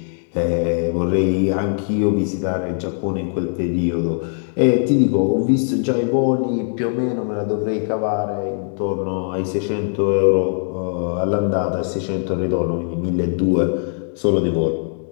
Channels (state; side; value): silent; right; 63 dB below the other